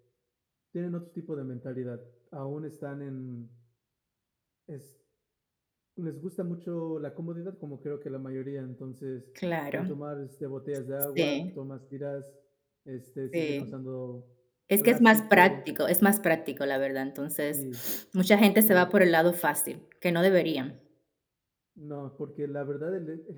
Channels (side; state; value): both; identical; correlation 1.00